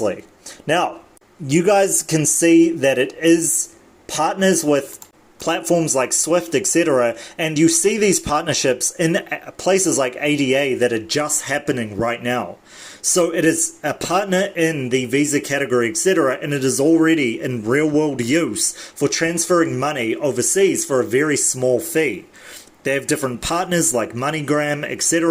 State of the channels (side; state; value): both; identical; correlation 1.00